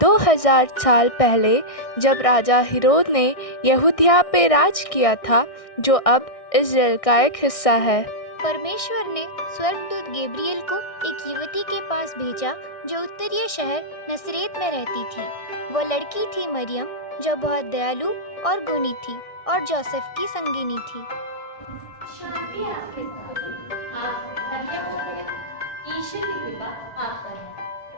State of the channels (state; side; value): late; right; 1.6 ms